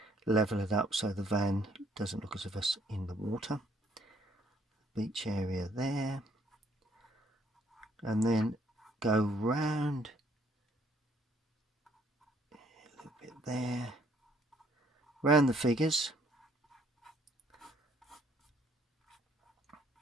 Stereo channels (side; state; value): both; normal; correlation 0.65